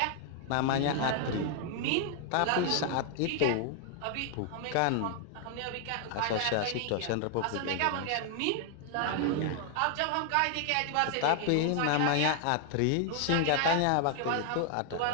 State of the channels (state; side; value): different; both; correlation 0.00